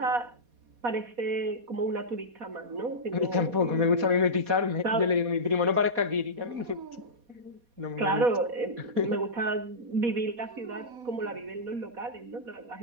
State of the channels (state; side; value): late; left; 4.2 ms